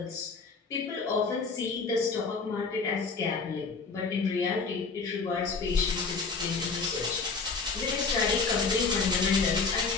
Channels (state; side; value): quieter; right; 4.7 dB